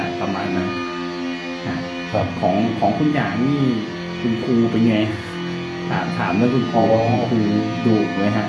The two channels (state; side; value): identical; both; correlation 1.00